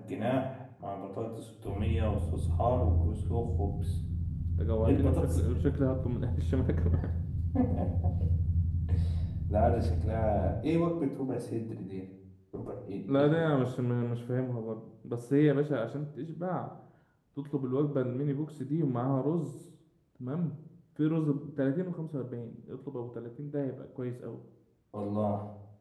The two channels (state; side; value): identical; both; correlation 1.00